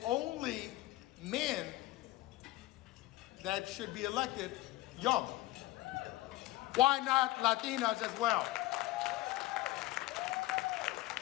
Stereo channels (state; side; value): quieter; right; 18.3 dB